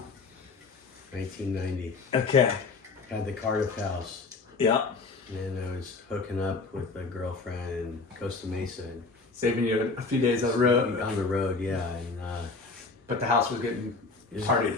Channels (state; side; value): quieter; right; 4.1 dB